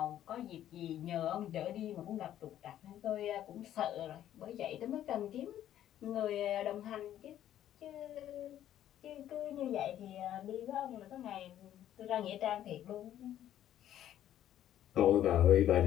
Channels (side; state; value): right; quieter; 11.7 dB